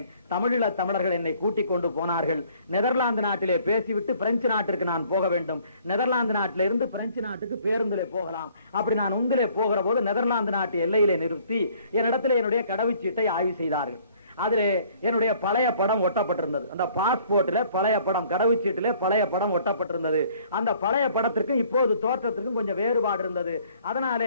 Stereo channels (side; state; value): both; inverted; correlation -0.59